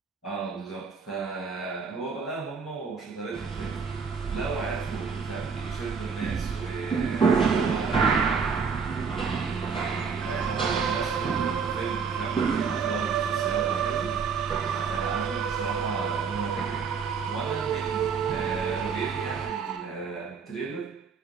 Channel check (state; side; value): quieter; left; 5.7 dB